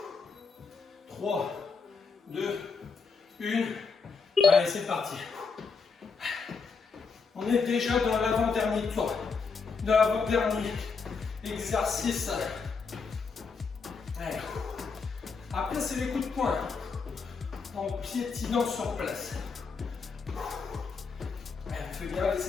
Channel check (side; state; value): right; quieter; 5.0 dB